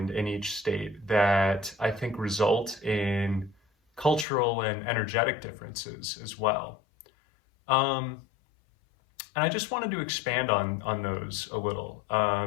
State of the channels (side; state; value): right; drops out; at 4.2 s